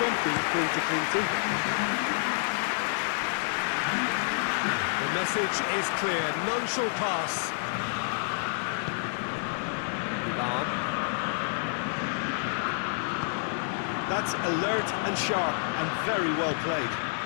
for him to cling to. The message is clear. None shall pass. That's alert and sharp and very well played.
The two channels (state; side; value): silent; right; digital silence